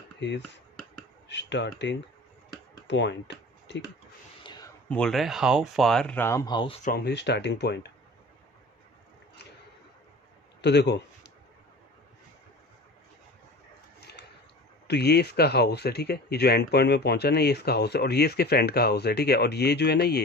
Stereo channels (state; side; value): normal; both; correlation 0.39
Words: his starting point, ठीक है। बोल रहा है how far Ram house from his starting point. तो देखो, तो ये इसका हाउस है, ठीक है। ये जो एंड पॉइंट में पहुंचा ना, ये इसका हाउस है, और ये इसके फ्रेंड का हाउस है, ठीक है। और ये जो है ना,